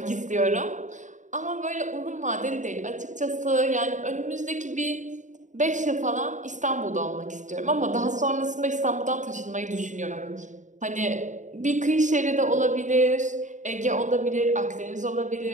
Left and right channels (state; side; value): late; left; 0.36 ms